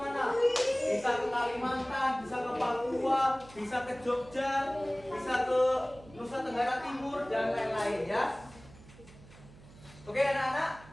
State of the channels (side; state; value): right; noise; hum, 21 dB below the sound